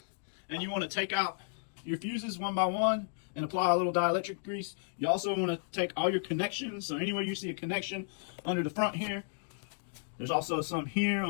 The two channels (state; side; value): silent; right; digital silence